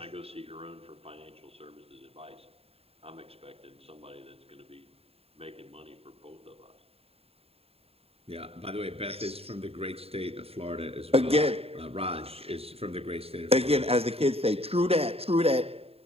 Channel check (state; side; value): late; left; 0.29 ms